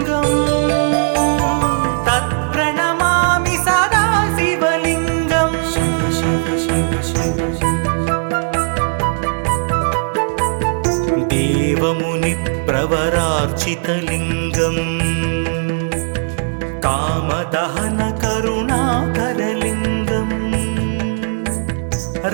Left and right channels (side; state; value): left; silent; digital silence